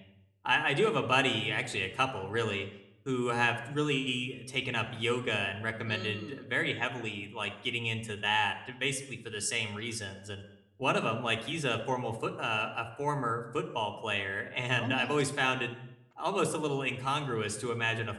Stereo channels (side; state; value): both; identical; correlation 1.00